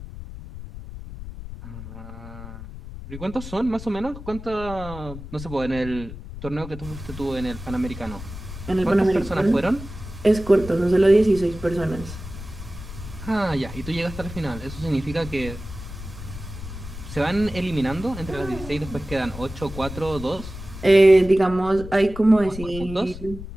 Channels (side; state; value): left; noise; rumble, 12 dB below the sound